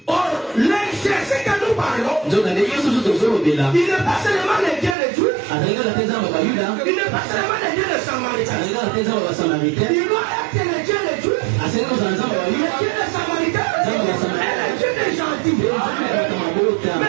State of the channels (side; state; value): left; drops out; at 5.0 s